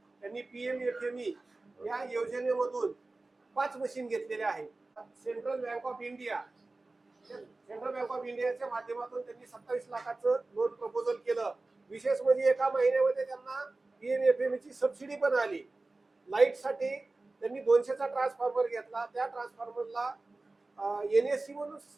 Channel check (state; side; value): quieter; left; 3.3 dB